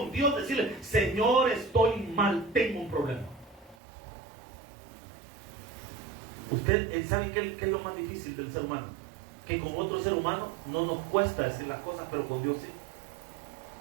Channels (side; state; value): left; drops out; at 3.8 s